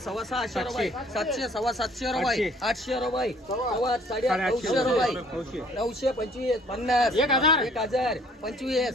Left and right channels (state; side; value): normal; both; correlation 0.57